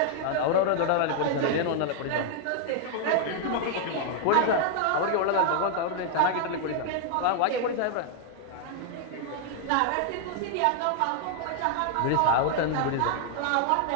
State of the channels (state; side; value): different; both; correlation 0.00